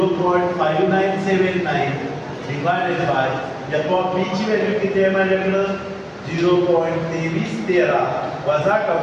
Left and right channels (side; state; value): both; identical; correlation 1.00